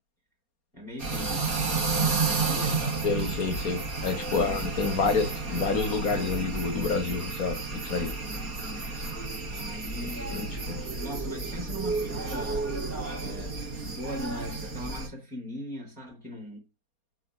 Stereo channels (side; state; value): right; late; 4.3 ms